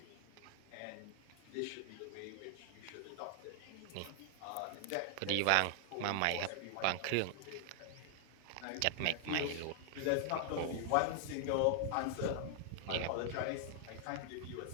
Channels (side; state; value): both; different; correlation 0.00